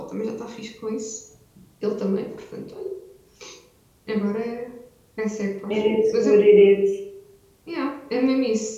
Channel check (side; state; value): both; identical; correlation 1.00